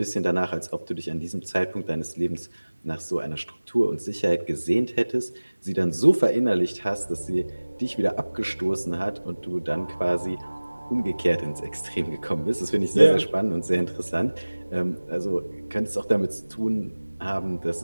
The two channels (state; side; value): inverted; both; correlation -1.00